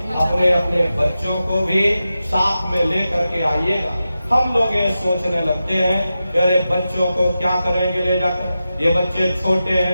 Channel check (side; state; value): both; inverted; correlation -0.92